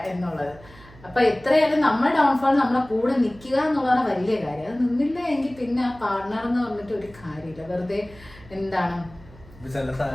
എന്നുള്ളത്. അപ്പൊ എത്രയായാലും നമ്മുടെ ഡൗൺഫോൾ നമ്മളെ കൂടെ നിൽക്കുക എന്നുള്ളതാണ് വലിയ കാര്യം. അത് നിന്നില്ല എങ്കിൽ പിന്നെ ആ പാർട്ണർ എന്ന് പറഞ്ഞിട്ട് ഒരു കാര്യമില്ല, വെറുതെ എന്താണ് ചില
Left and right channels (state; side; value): noise; right; hum, 22 dB below the sound